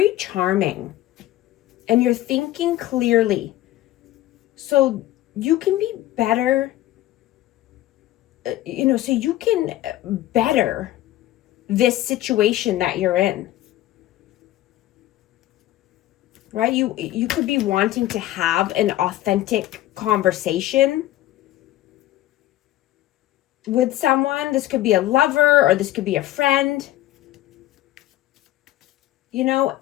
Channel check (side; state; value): right; quieter; 14.9 dB